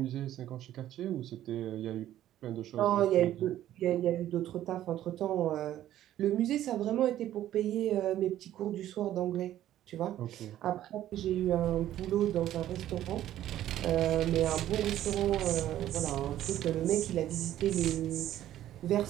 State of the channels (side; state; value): left; quieter; 12.6 dB